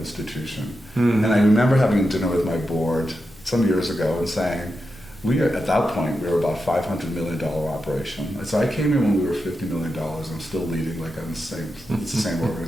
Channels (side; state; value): left; noise; rumble, 23 dB below the sound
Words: And I remember having dinner with my board some years ago and saying, at that point, we were about $500 million operation. So I came in when we were $50 million. I'm still leading like I'm it's the same